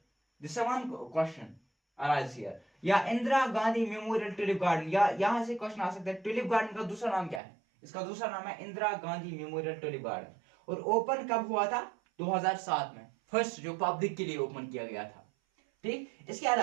This is one question arise here. या Indira Gandhi memorial tulip garden, या यहाँ से क्वेश्चन आ सकता है टुलिप गार्डन का दूसरा नाम क्या है? इसका दूसरा नाम है Indira Gandhi memorial tulip garden, और ओपन कब हुआ था? 2007 में, फर्स्ट जो पब्लिक के लिए ओपन किया गया था। ठीक, इसके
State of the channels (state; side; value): drops out; left; at 7.4 s